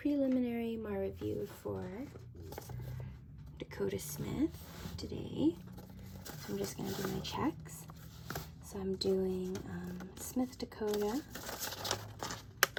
MAR review for Dakota Smith today. So I'm just going to do my checks. So I'm doing Smith Dakota,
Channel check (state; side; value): identical; both; correlation 1.00